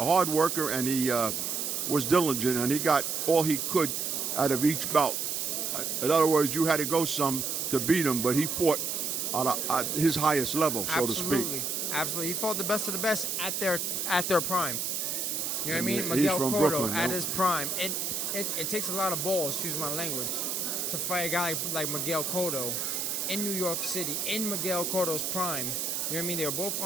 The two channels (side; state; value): right; noise; hiss, 1 dB below the sound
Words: worker, and he was diligent, and he got all he could out of each bout. In other words, you had to go some to beat him, but he fought at his highest level, so to speak. Absolutely. He fought the best of the best at their prime. You know what I mean? He's Miguel from Cotto Brooklyn, at his prime. It takes a lot of balls, excuse my language, to fight a guy like Miguel Cotto in New York City, in Miguel Cotto's prime. You know what I mean? They were both